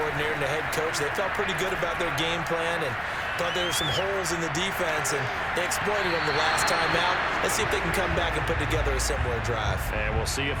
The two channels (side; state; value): both; identical; correlation 1.00